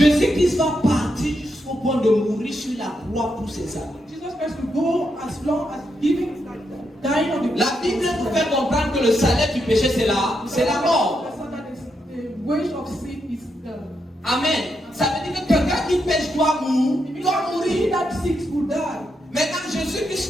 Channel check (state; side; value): normal; both; correlation 0.82